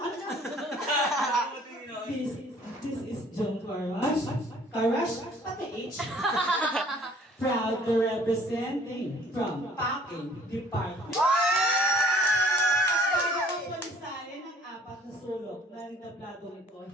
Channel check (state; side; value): normal; both; correlation 0.56